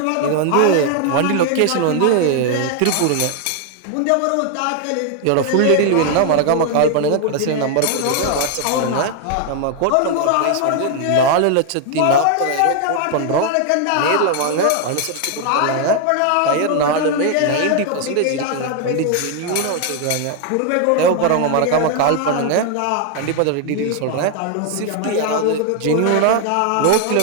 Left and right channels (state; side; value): different; both; correlation 0.00